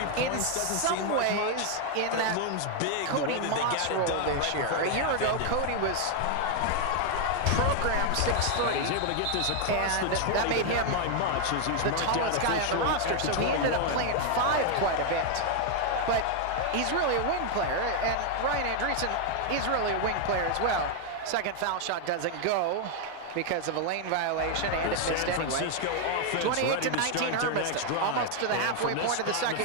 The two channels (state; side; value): different; both; correlation 0.00